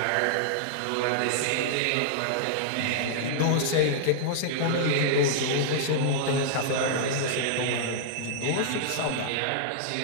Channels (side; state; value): both; different; correlation -0.01